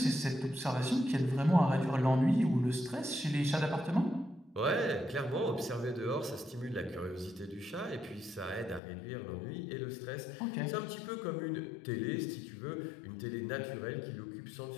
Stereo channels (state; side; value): drops out; right; at 8.8 s